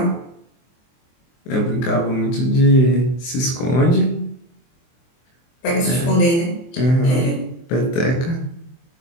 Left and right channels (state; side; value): late; right; 23 ms